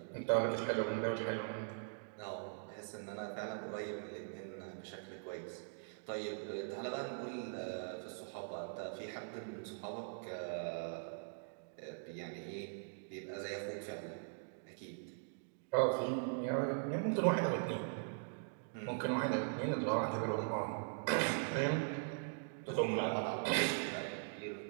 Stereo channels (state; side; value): silent; left; digital silence